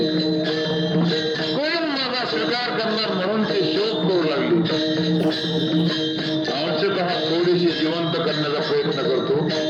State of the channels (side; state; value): both; identical; correlation 1.00